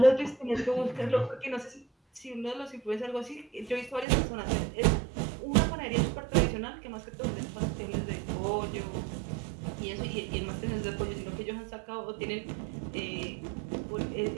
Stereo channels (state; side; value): drops out; left; at 4.0 s